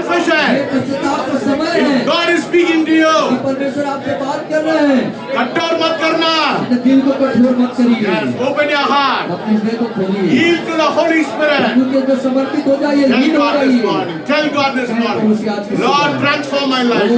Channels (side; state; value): both; identical; correlation 1.00